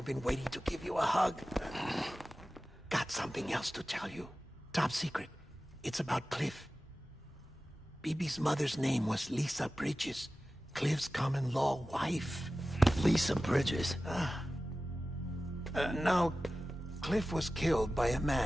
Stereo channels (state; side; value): normal; both; correlation 0.95